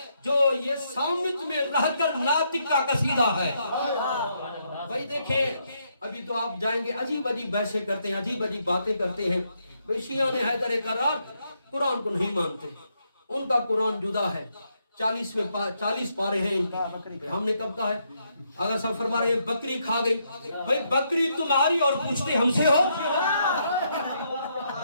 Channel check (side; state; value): both; inverted; correlation -0.77